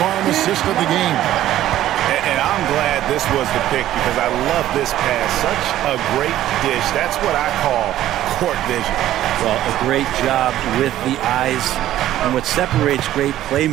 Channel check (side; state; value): left; quieter; 13.2 dB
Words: assist of the game. And I'm glad this was the pick because I love this pass. Such a great dish. That's what I call court vision. Well, a great job with the eyes. And what separates great